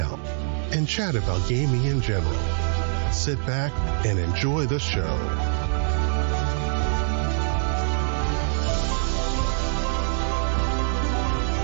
and chat about gaming in general. Sit back and enjoy the show.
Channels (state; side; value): silent; left; digital silence